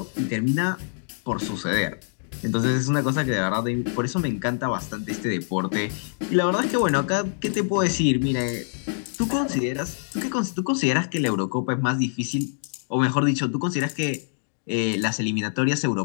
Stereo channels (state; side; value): silent; right; digital silence